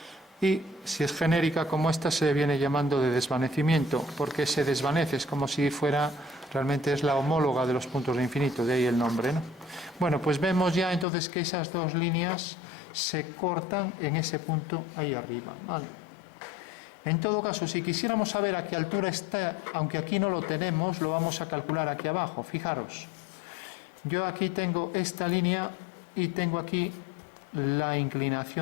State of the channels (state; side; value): drops out; right; at 11.1 s